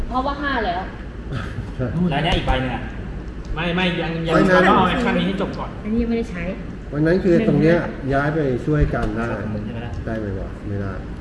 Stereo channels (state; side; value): identical; both; correlation 1.00